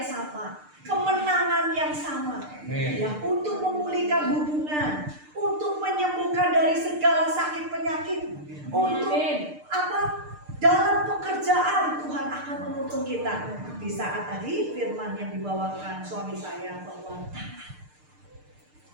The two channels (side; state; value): left; late; 6.7 ms